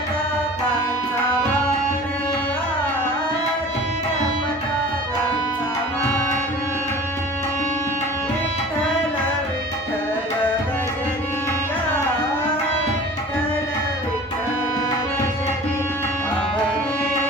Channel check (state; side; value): normal; both; correlation 0.42